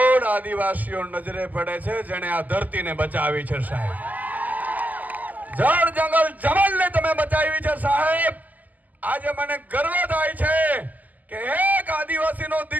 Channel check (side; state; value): left; late; 0.080 ms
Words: આદિવાસીઓ નજરે પડે છે જેણે આ ધરતીને બચાવી છે. સાહેબ, જળ જંગલ જમલને તમે બચાવી છે. સાહેબ, આજે મને ગર્વ થાય છે કે એક આદિવાસીનો